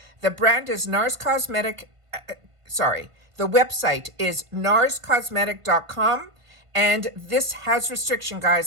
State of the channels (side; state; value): left; late; 1.5 ms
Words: The brand is Nars Cosmetic, the website is narscosmetic.com. And this has restriction,